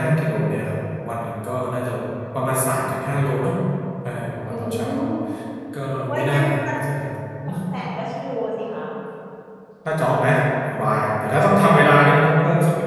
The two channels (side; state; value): both; identical; correlation 1.00